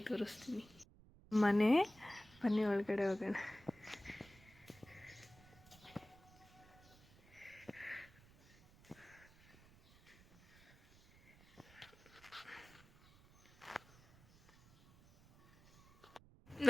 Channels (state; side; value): noise; right; rumble, 23 dB below the sound